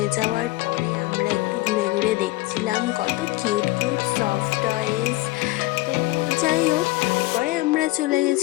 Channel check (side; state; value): right; quieter; 19.8 dB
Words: যাওয়ার পরে আমরা একটু ঘুরে ঘুরে দেখছিলাম কত কিউট কিউট সফট টয়েস। তো যাই হোক, তারপরে আমরা চলে